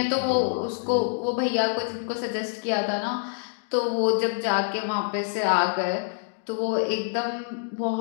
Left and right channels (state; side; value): silent; right; digital silence